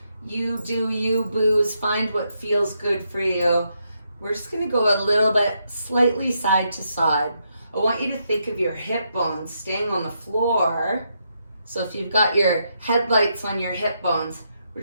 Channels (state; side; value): inverted; both; correlation -0.80